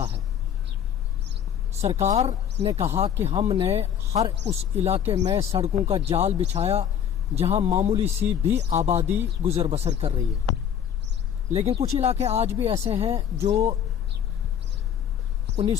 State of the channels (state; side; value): quieter; right; 9.0 dB